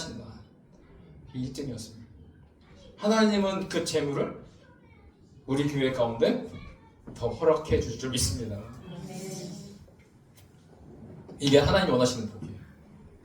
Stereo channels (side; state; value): both; identical; correlation 1.00